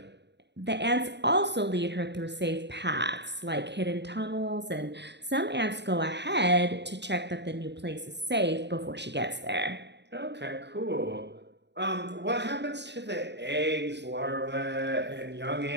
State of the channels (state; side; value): late; left; 0.50 ms